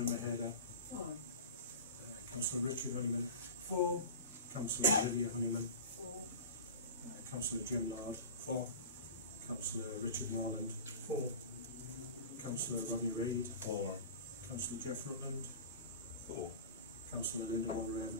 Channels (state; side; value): inverted; both; correlation -0.34